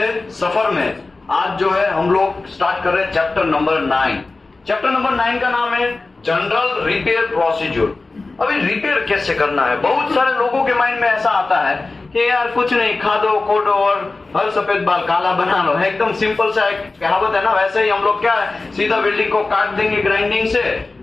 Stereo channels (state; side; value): quieter; right; 3.5 dB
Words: सफर में आज जो है हम लोग स्टार्ट कर रहे हैं चैप्टर नंबर 9। चैप्टर नंबर 9 का नाम है जनरल रिपेयर प्रोसीजर। अभी रिपेयर कैसे करना है, बहुत सारे लोगों के माइंड में ऐसा आता है कि यार कुछ नहीं, खा दो खोदो और हर सफेद बाल काला बना लो। एकदम सिंपल सा एक कहावत है ना, वैसे ही हम लोग क्या है, सीधा वेल्डिंग को काट देंगे